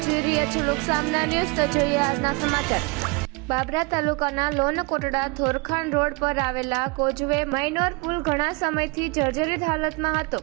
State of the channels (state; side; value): quieter; left; 28.0 dB